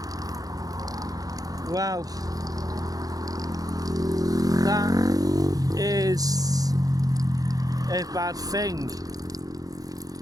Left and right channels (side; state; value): left; late; 0.18 ms